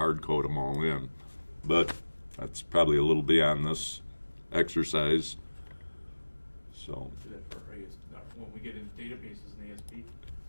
code them all in. But that's probably a little beyond this exercise. So. Do that for when we get into databases and ASP.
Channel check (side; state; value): both; inverted; correlation -1.00